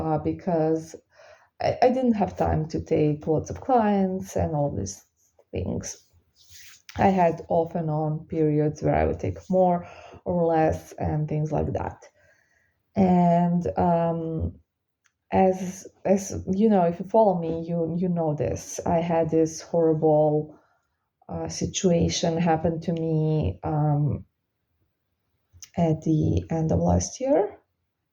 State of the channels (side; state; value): both; identical; correlation 1.00